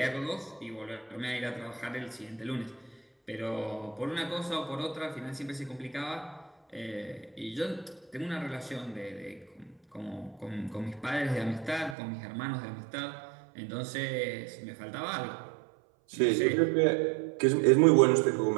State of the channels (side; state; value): left; drops out; at 12.0 s